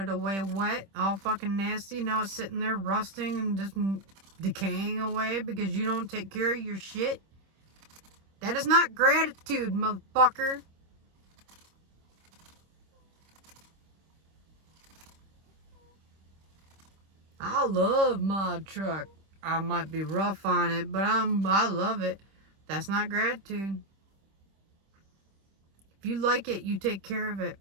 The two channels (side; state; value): left; late; 26 ms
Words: away wet, all fucking nasty? Now it's sitting there rusting and just decaying away because you don't take care of your shit? That is not gratitude, motherfucker. I love my truck. I might be rough on it, but I love it. That's not gratitude. If you like it, you take care of it.